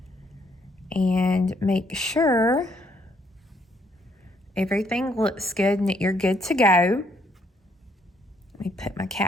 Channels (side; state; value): both; normal; correlation 0.69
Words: And make sure everything looks good and that you're good to go. Let me put my